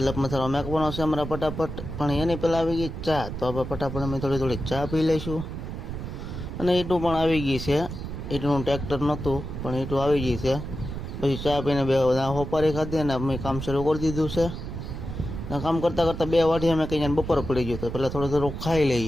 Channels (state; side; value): noise; right; rumble, 7 dB below the sound